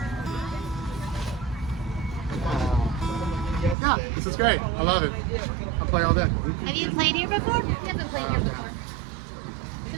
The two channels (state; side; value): drops out; left; at 3.8 s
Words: Yeah, this is great. I love it. I'll play all day. Have you played here before? Never played here before. It's a